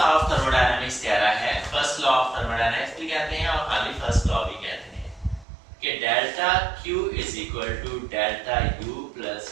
ऑफ थर्मोडायनामिक्स कह रहा है, फर्स्ट लॉ ऑफ थर्मोडायनामिक्स भी कहते हैं और खाली फर्स्ट लॉ भी कहते हैं कि delta Q is equal to delta U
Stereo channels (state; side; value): drops out; left; at 5.5 s